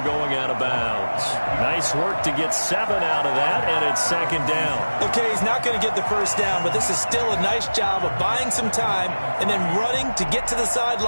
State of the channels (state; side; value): inverted; both; correlation -1.00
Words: going out of bounds. Nice work to get 7 out of that, and it's 2nd down. Okay, he's not going to get the first down, but this is still a nice job of buying some time and then running to get to the